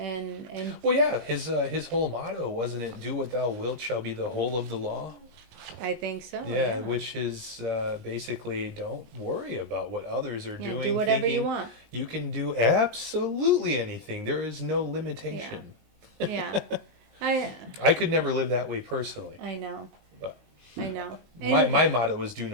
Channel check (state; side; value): late; left; 19 ms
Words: Well, yeah, his whole motto wasn't it? "Do what thou wilt shall be the whole of the law." I think so. Yeah, Yeah, which is basically don't worry about what others are yeah. Do doing, whatever you thinking want. you can do absolutely anything. There is no Yeah, limitation. yeah. I I could never live that way personally, I know. but I know. my And motto is do